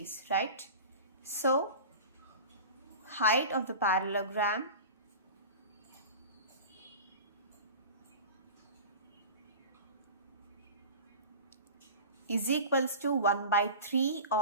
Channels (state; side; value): inverted; both; correlation -0.35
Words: right? So height of the parallelogram is equals to 1/3